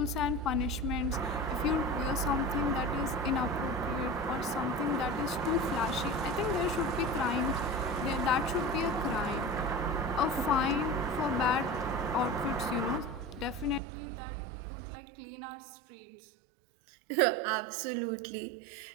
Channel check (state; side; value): drops out; left; at 13.8 s